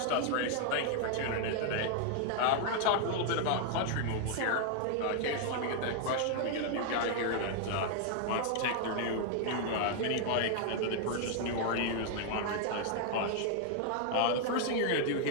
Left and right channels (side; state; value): both; different; correlation 0.00